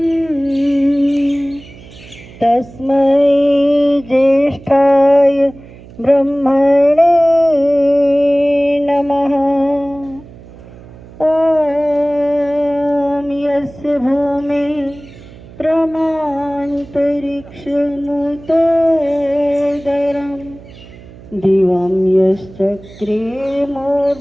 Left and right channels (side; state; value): right; noise; hum, 20 dB below the sound